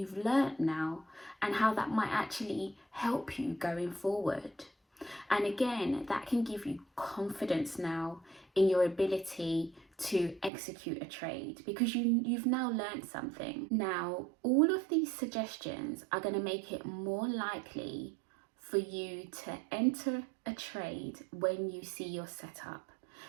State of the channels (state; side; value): drops out; left; at 10.5 s